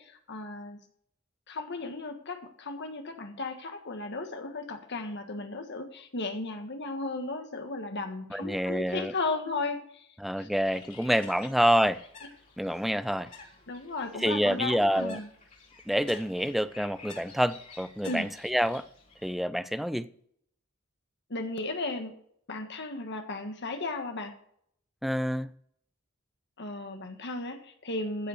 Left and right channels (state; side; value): normal; both; correlation 0.74